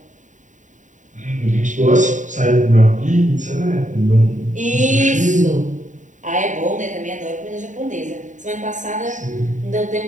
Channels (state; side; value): late; left; 0.36 ms